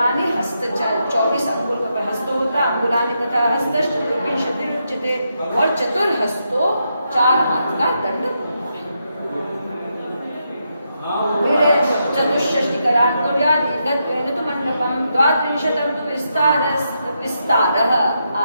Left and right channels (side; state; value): both; inverted; correlation -0.82